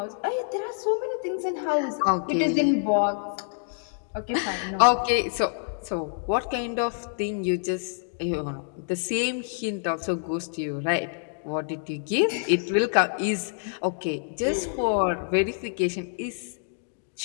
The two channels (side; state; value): right; silent; digital silence